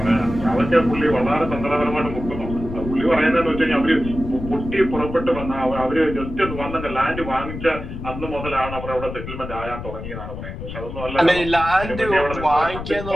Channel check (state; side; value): noise; left; rumble, 9 dB below the sound